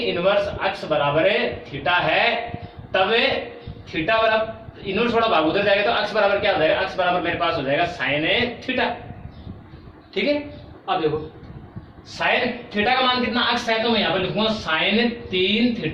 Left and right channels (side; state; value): both; identical; correlation 1.00